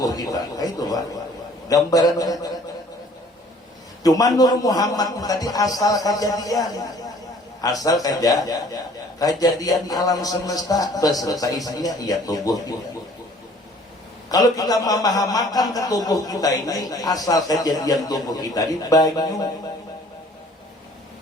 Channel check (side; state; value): both; normal; correlation 0.54